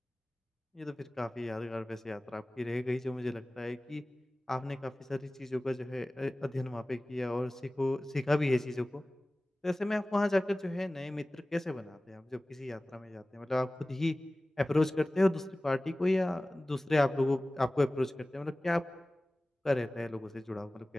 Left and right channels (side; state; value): both; normal; correlation 0.98